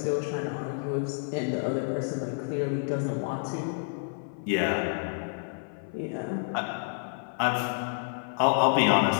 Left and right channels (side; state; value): right; silent; 56 dB below the other